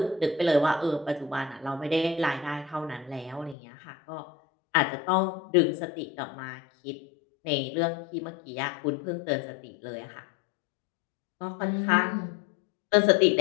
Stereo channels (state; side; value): drops out; right; at 3.6 s